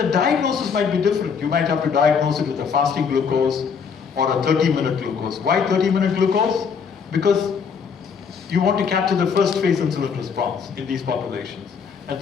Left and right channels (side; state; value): right; quieter; 6.3 dB